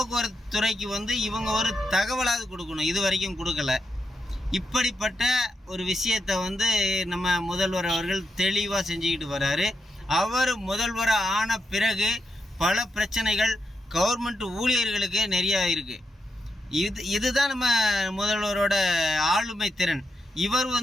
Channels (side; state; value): both; normal; correlation 0.84